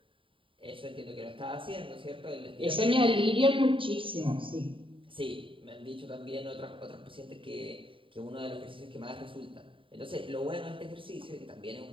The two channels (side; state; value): left; late; 0.25 ms